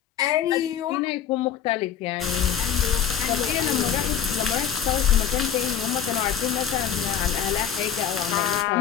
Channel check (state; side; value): quieter; right; 8.7 dB